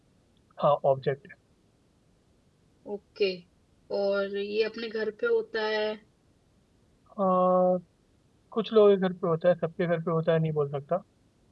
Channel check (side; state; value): both; identical; correlation 1.00